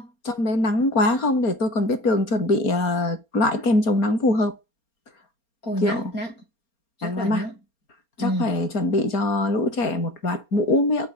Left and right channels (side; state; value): right; late; 4.3 ms